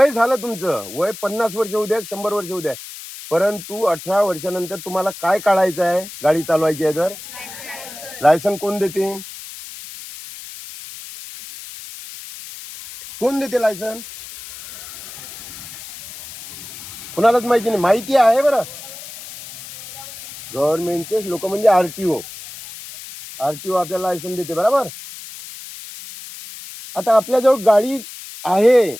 झालं तुमचं वय 50 वर्ष होऊ द्या, 100 वर्ष होऊ द्या, परंतु 18 वर्षानंतर तुम्हाला काय काढायचं आहे, गाडी चालवायची आहे तर लायसन कोण देते? कोण देते लायसन? कोणालाच माहिती नाही. माहिती आहे बरं, गव्हर्नमेंटचे लोक म्हणजे आरटीओ आपल्याला लायसन देते, बरोबर. आता आपल्याजवळ गाडी आहे,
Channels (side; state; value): left; noise; hiss, 13 dB below the sound